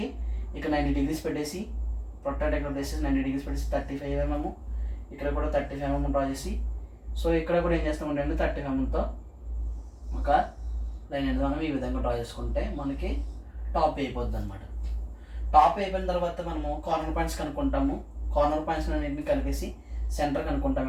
ఇక్కడ 90 degrees పెట్టేసి ప్రొట్రాక్టర్ ఇక్కడ ప్లేసెస్ 90 degrees పెట్టేసి 35 mm, ఇక్కడ కూడా 35 mm డ్రా చేసి, సో ఇక్కడ కూడా ఏం చేస్తామంటే అండి 35 mmతో ఒక లైన్ అనేది మనం ఈ విధంగా డ్రా చేసుకుంటే మనకి టాప్ అయిపోద్ది అనమాట. టాప్ అయిపోయిన తర్వాత మనము కార్నర్ పాయింట్స్ కనుక్కుంటాము. కార్నర్ పాయింట్స్ అన్నింటిని కలిపేసి సెంటర్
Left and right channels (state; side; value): identical; both; correlation 1.00